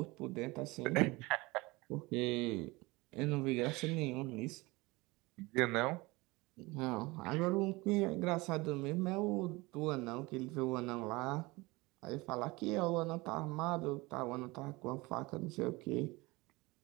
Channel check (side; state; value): left; quieter; 23.0 dB